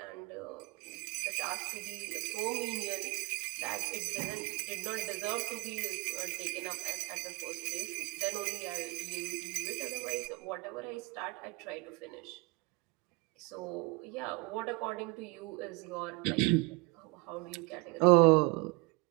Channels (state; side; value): quieter; left; 26.4 dB